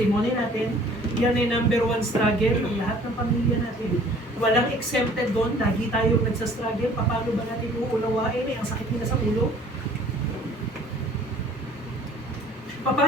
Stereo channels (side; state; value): both; normal; correlation 0.53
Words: natin. Yan ay number 1 struggle ng lahat ng pamilya natin. Walang exempted doon, lagi tayong nagsastruggle. Paano ba natin uunawain? Ang sakit nila sa ulo.